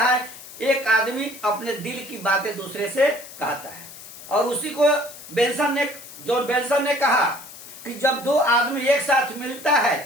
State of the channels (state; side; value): noise; left; hiss, 16 dB below the sound